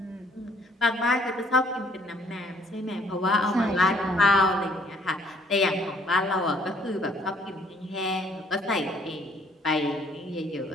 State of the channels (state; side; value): normal; both; correlation 0.62